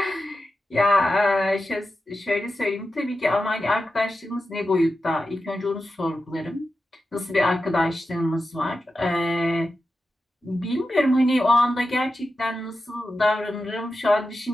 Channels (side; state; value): both; normal; correlation 0.91